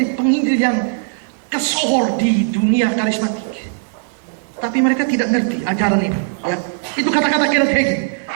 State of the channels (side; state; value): left; silent; 67 dB below the other